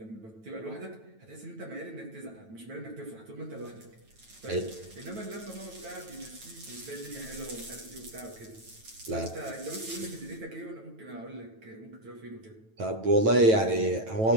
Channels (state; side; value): late; left; 9.1 ms